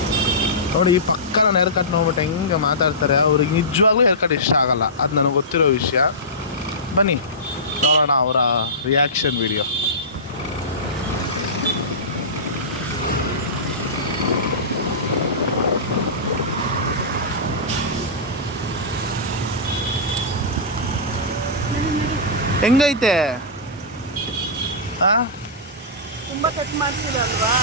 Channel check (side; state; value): both; normal; correlation -0.19